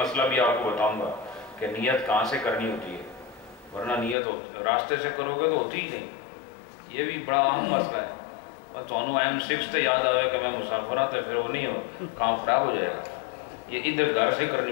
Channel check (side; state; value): right; drops out; at 4.2 s